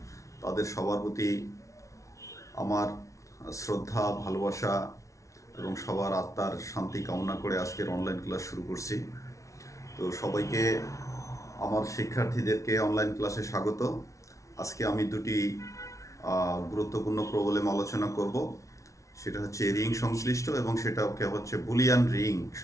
তাদের সবার প্রতি আমার শ্রদ্ধা, ভালোবাসা এবং সবার আত্মার শান্তি কামনা করে আজকের অনলাইন ক্লাস শুরু করছি। তো সবাইকে, আমার শিক্ষার্থীদেরকে অনলাইন ক্লাসে স্বাগত। আজকে আমি দুটি গুরুত্বপূর্ণ প্রবলেম আলোচনা করব। সেটা হচ্ছে রিং সংশ্লিষ্ট এবং সেটাকে হচ্ছে বুলিয়ান রিং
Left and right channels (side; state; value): right; late; 0.15 ms